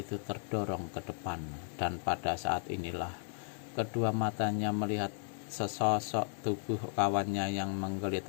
itu terdorong ke depan, dan pada saat inilah kedua matanya melihat sesosok tubuh kawannya yang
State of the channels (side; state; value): right; silent; 54 dB below the other